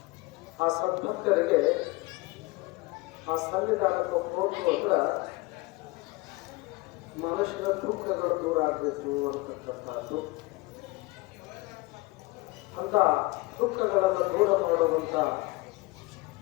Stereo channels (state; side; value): quieter; right; 22.3 dB